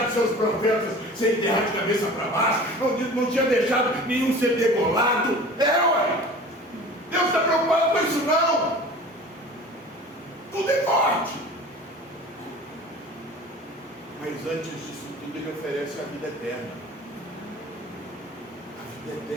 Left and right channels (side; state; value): both; normal; correlation 0.40